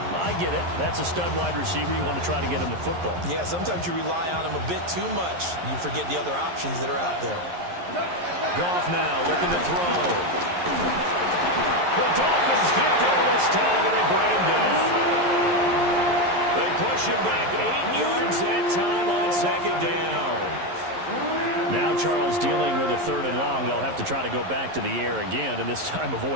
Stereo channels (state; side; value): late; left; 11 ms